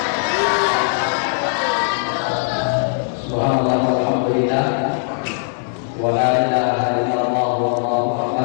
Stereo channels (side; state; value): right; silent; digital silence